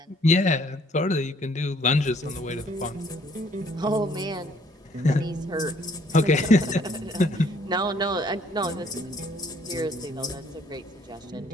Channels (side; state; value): both; normal; correlation 0.62